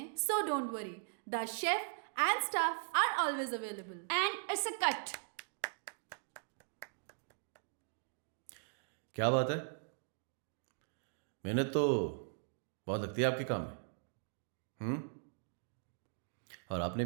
so don't worry, the chef and staff are always available. And it's a cut. क्या बात है? मेहनत तो बहुत लगती है आपके काम में। और आपने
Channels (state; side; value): silent; left; digital silence